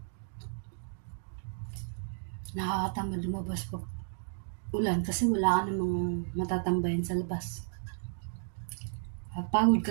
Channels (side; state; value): left; silent; digital silence